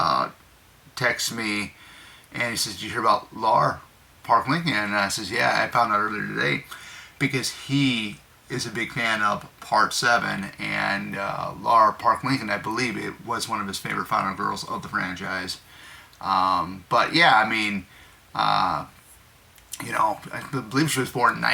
texted me, and he says, "Did you hear about Laura Park Lincoln?" And I says, "Yeah, I found out earlier today," because he is a big fan of Part 7, and Laura Park Lincoln, I believe, it was one of his favorite final girls of the franchise. But yeah, I mean, I believe she was born in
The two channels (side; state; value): both; identical; correlation 1.00